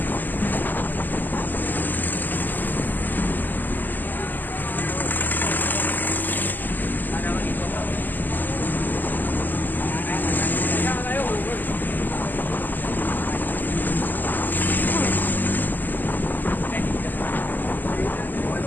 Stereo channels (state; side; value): late; right; 0.087 ms